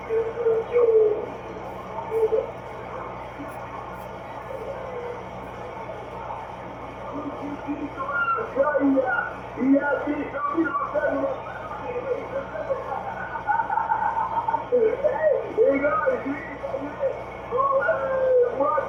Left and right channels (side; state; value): both; identical; correlation 1.00